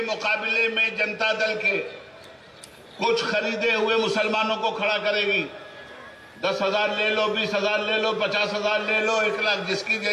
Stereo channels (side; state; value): both; identical; correlation 1.00